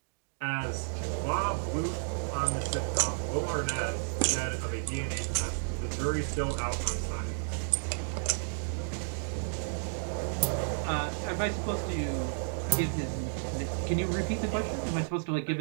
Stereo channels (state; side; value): silent; left; digital silence